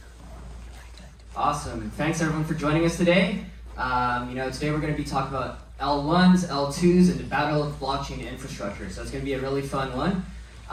Awesome. Thanks everyone for joining us today. Today we're going to be talking about L1s, L2s, and the battle of blockchain infrastructure. So it's going to be a really fun one.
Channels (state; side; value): identical; both; correlation 1.00